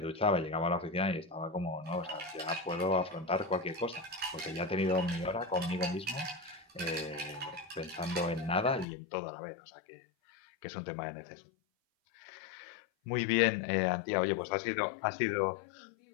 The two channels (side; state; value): right; drops out; at 8.8 s